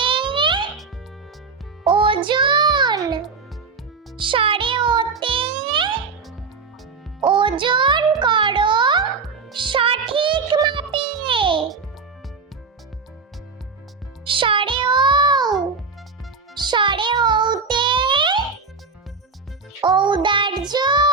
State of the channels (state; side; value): quieter; left; 4.8 dB